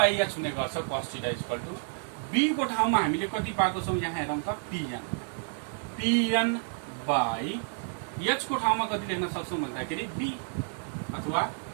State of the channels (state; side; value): silent; left; 58 dB below the other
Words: h हुने गर्छ cos theta is equal to b को ठाउँमा हामीले कति पाएको छौं यहाँ हेरौँ त pn बाई h को ठाउँमा कति लेख्न सक्छौं भन्दाखेरि b अथवा